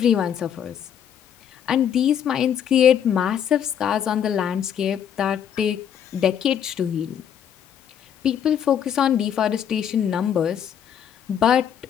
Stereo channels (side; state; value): right; quieter; 8.9 dB